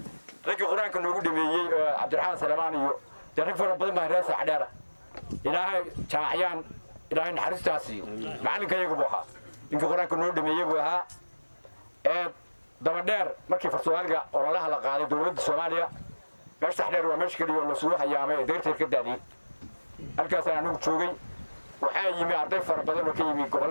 ragii quraanka noogu dhameeyay Cabdiraxmaan Salamaan iyo rag fara badan baa reer sax dheer ilaahay jaamacayaan ilaahay naxariistaasi macalinkayagu buu ahaa inka quraanka noo dhameeyay buu ahaa daba dheer markii Soomaaliga ololaha la qaaday dawladda Soomaaliya meesha sax dheer waa meesha kaliya oo la soo hayaamay deerteed ka daadiyay halkaas aan ugu joogay waxaa yimi arday fara badan oo ka yimi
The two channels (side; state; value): both; inverted; correlation -1.00